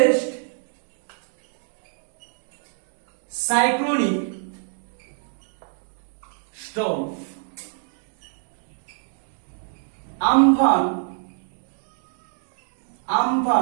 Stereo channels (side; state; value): left; silent; digital silence